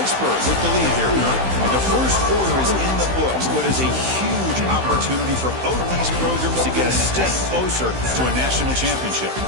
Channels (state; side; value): late; left; 16 ms